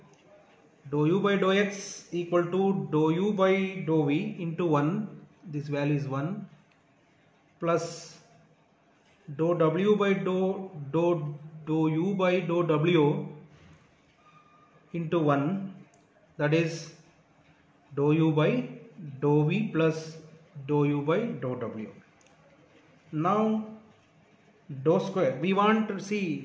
dou u by dou x equal to dou u by dou v into 1, this value is 1, plus dou w by dou u by dou w into 1, that is dou u by dou v plus dou u by dou w. Now dou square, we want to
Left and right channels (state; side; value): identical; both; correlation 1.00